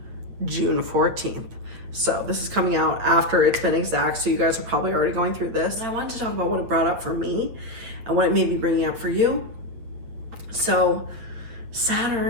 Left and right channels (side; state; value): left; late; 8.6 ms